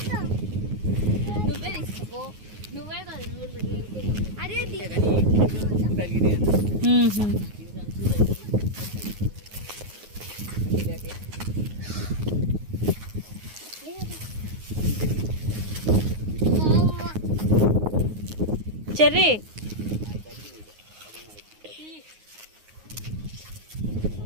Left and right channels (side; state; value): left; late; 9.5 ms